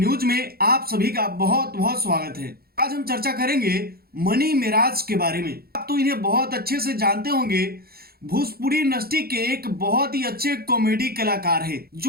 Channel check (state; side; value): late; left; 0.44 ms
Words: में आप सभी का बहुत बहुत स्वागत है। आज हम चर्चा करेंगे मनी मिराज के बारे में। आप तो इन्हें बहुत अच्छे से जानते होंगे। भोजपुरी इंडस्ट्री के एक बहुत ही अच्छे कॉमेडी कलाकार है